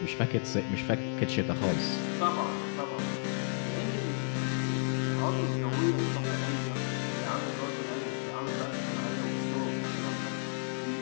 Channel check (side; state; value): right; silent; digital silence